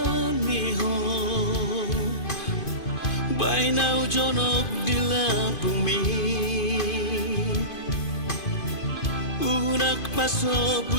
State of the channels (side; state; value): right; late; 2.5 ms